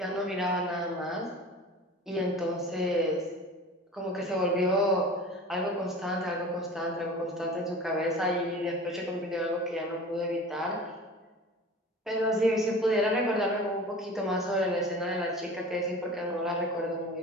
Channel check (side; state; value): both; normal; correlation 0.38